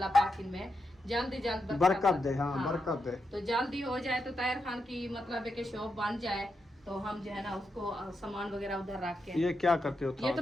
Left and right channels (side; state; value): both; normal; correlation 0.85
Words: पाक इनमें जल्दी जल्द बरकत दे। हाँ बरकत दे। तो जल्दी हो जाए, तो ताहिर खान की मतलब है कि शॉप बन जाए, तो हम जो है ना उसको सामान वगैरह उधर रख के। ये क्या करते हो? ये